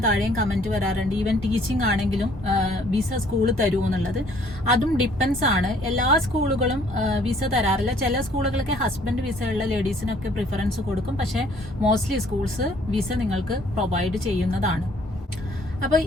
താഴെയും കമന്റ് വരാറുണ്ട്, ഈവൻ ടീച്ചിങ് ആണെങ്കിലും വിസ സ്കൂൾ തരുമോ എന്നുള്ളത്. അതും ഡിപ്പെൻസ് ആണ്. എല്ലാ സ്കൂളുകളും വിസ തരാറില്ല. ചില സ്കൂളുകളൊക്കെ ഹസ്ബൻഡ് വിസ ഉള്ള ലേഡീസിനൊക്കെ പ്രിഫറൻസ് കൊടുക്കും. പക്ഷെ മോസ്റ്റ്ലി സ്കൂൾസ് വിസ നിങ്ങൾക്ക് പ്രൊവൈഡ് ചെയ്യുന്നതാണ്. അപ്പൊ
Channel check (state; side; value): normal; both; correlation 0.60